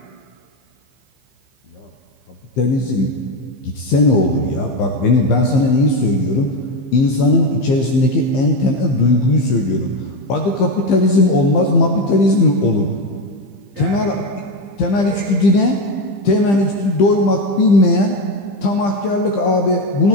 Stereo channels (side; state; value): right; late; 15 ms